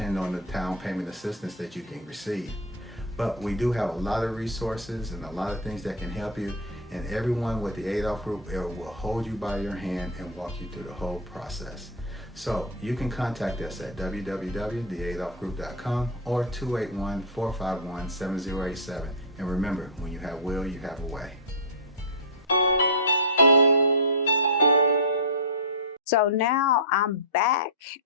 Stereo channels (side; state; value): both; normal; correlation -0.02